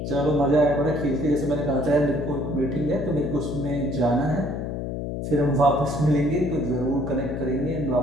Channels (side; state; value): left; noise; hum, 4 dB below the sound